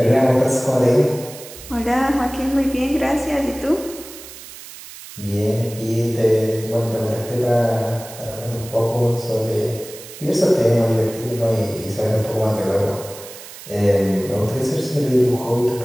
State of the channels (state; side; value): noise; right; hiss, 15 dB below the sound